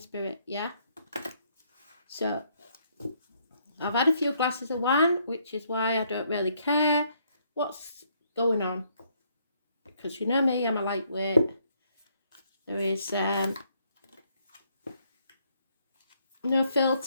yeah? So I've had a few glasses of wine, which is why I don't really care what's going on. Because you know me, I'm a lightweight. There is no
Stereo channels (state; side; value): inverted; both; correlation -0.71